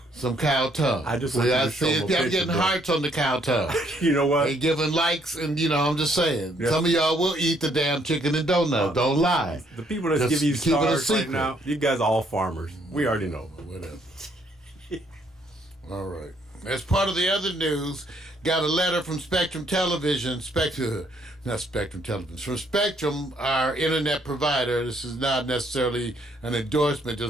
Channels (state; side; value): normal; both; correlation 0.68